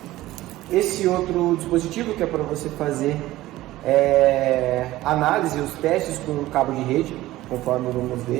Esse outro dispositivo que é para você fazer análise e os testes com o cabo de rede, conforme vamos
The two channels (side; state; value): left; quieter; 16.5 dB